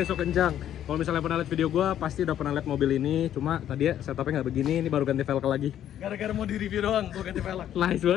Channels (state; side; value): quieter; right; 10.9 dB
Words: sok kencang. Kalau misalnya pernah lihat video gue, pasti udah pernah lihat mobil ini. Cuma tadi ya setupnya nggak begini, ini baru ganti velg lagi. Gara-gara mau di review doang, gue ganti velg. Nice